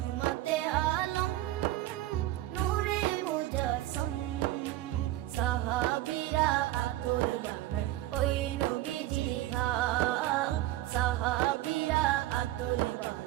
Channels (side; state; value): left; quieter; 15.2 dB